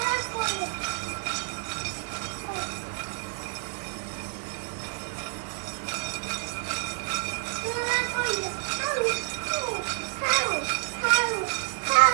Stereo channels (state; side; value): silent; left; digital silence